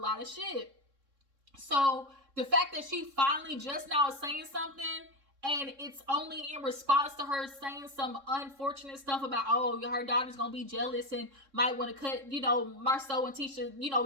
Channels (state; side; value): late; left; 3.6 ms